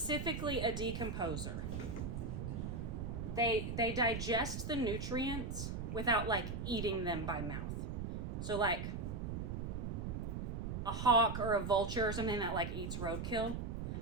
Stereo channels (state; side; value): noise; right; rumble, 4 dB below the sound